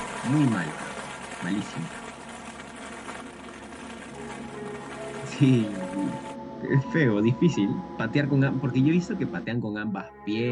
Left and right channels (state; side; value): identical; both; correlation 1.00